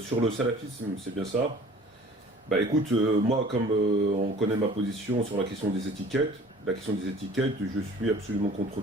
le salafisme, c'est bien ça. Bah écoute, moi, comme on connaît ma position sur la question des étiquettes, je suis absolument contre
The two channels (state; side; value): normal; both; correlation 0.48